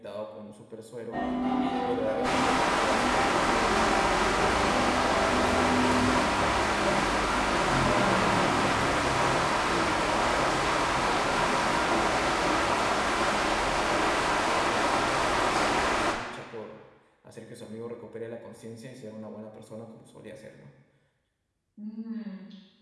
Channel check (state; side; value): identical; both; correlation 1.00